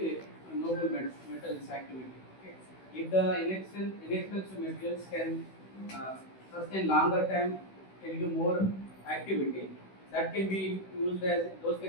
noble metals activity. Okay. If the inexpensive materials can sustain longer time, can give more activity, that can be used as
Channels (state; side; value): late; right; 16 ms